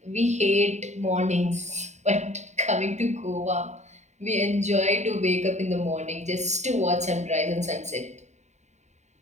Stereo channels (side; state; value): left; late; 0.34 ms